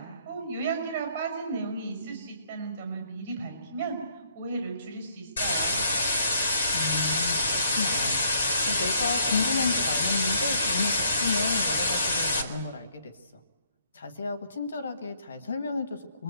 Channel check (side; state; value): both; inverted; correlation -0.66